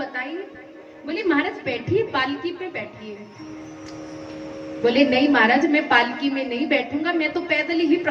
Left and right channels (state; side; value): identical; both; correlation 1.00